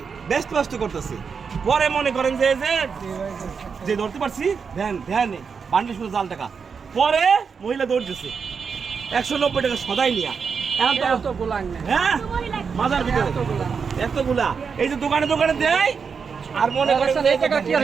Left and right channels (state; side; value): quieter; left; 5.9 dB